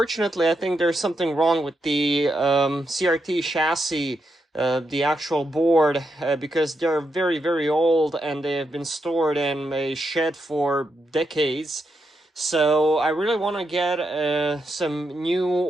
I think there's something wrong with the CRT chassis, the actual board, because they're very, very old and they have been stored in a shed for decades. So I really want to get some new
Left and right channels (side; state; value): both; normal; correlation 0.82